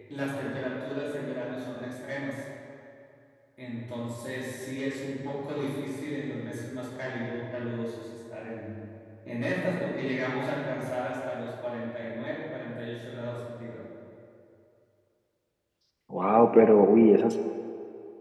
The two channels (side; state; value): both; identical; correlation 1.00